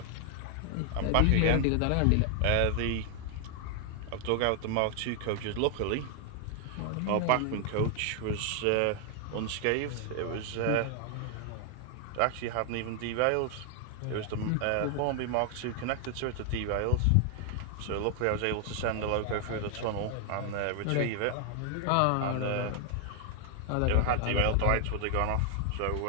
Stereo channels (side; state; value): both; different; correlation 0.00